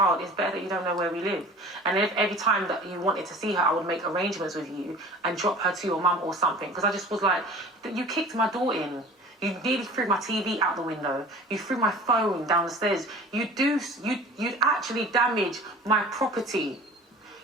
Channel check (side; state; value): both; normal; correlation 0.42